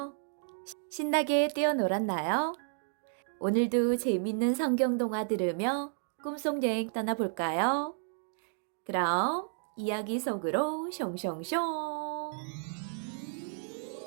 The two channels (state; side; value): silent; left; digital silence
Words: 신나게 뛰어놀았나요? 오늘도 재밌는 성경 동화 들으며 꿈속 여행 떠나볼까요? 그럼 이야기 속으로 숑숑숑.